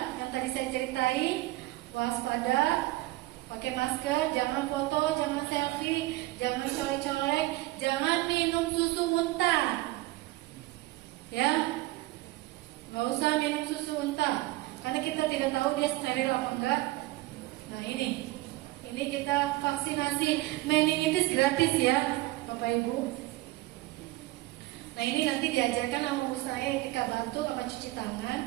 yang tadi saya ceritain. Waspada, pakai masker, jangan foto, jangan selfie, jangan colek-colek, jangan minum susu muntah. Ya, nggak usah minum susu muntah, karena kita tidak tahu dia steril apa enggak. Nah ini kita vaksinasi meningitis gratis ya, Bapak Ibu. Nah ini nanti diajarkan sama ibu saya ketika bantu sama cuci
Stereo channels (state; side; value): quieter; left; 19.2 dB